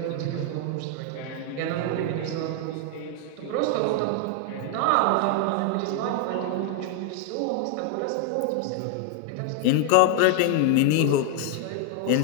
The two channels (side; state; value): both; different; correlation 0.00